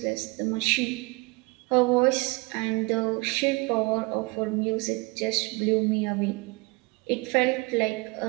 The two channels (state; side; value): quieter; left; 26.1 dB